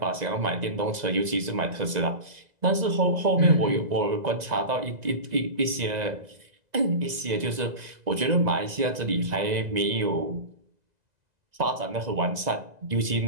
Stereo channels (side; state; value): left; late; 2.0 ms